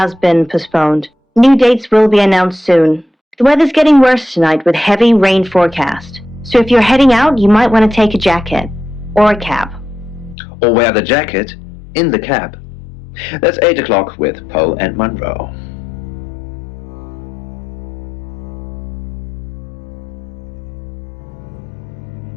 been postponed. New dates will be announced soon. The weather's getting worse tonight with heavy rain forecast. So if you're heading out, you might want to take a jacket. Or a cab. Or wear the jacket in the cab. That's 8 o'clock with Poe and Monroe.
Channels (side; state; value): right; drops out; at 10.4 s